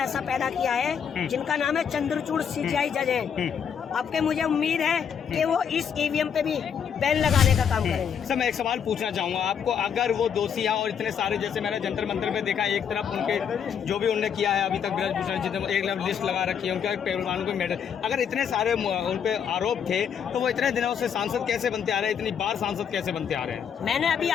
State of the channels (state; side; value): quieter; right; 7.7 dB